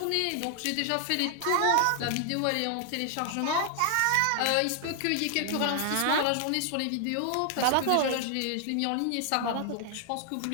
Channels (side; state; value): both; different; correlation 0.00